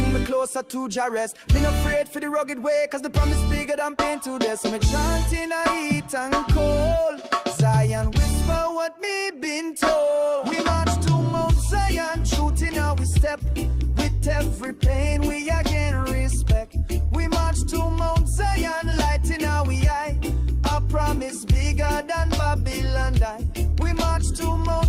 me closer to Jah rest. Me not afraid for the rugged way, cause the promise bigger than pain to death. So me chanting a heat and cold. Zion whisper what me been told. We march to Mount Zion, truth in how we step. Every pain we again respect. We march to Mount Zion, light in our eye. Our promise bigger than Babylon die. We march to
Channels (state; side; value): identical; both; correlation 1.00